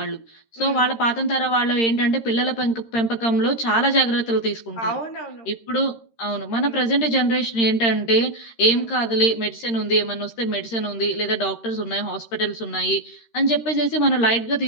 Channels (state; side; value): late; right; 13 ms